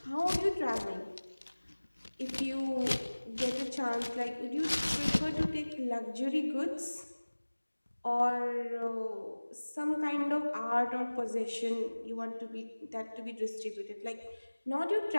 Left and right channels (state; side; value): inverted; both; correlation -1.00